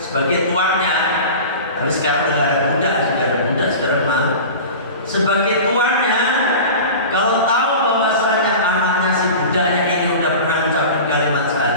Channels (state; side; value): inverted; both; correlation -0.34